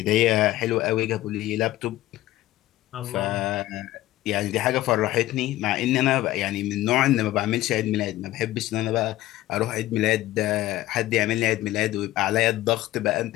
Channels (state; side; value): quieter; right; 15.9 dB